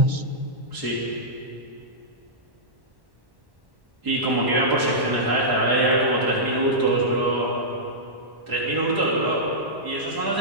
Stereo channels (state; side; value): late; left; 1.1 ms